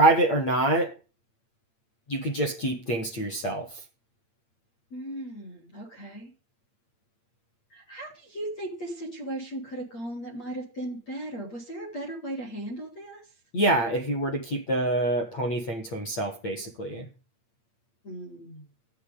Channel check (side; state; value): right; late; 8.7 ms